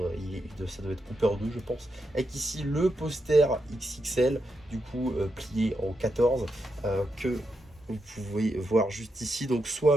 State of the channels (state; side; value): normal; both; correlation 0.84